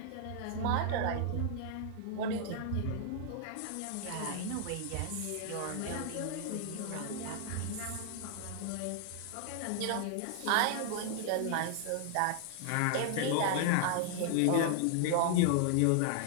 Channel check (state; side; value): different; both; correlation 0.00